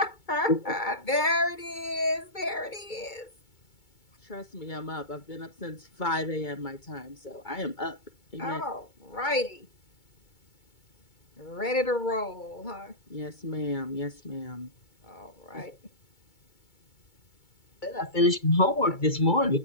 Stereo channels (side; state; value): right; late; 2.2 ms